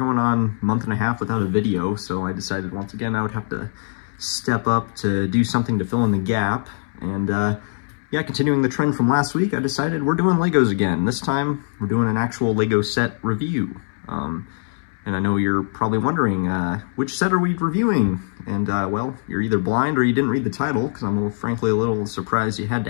on a month and a half without a video, so I decided once again I would have to step up to do something to fill in the gap. And yeah, continuing the trend from last week, I decided we're doing Legos again. This time, we're doing an actual Lego set review. And I know you're probably wondering, which set are we reviewing? And, well, you're either blind or you didn't read the title, because I'm frankly a little surprised you had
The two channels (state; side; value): silent; right; 64 dB below the other